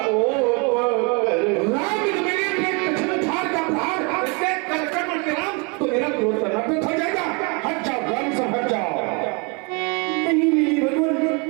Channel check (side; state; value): left; quieter; 32.1 dB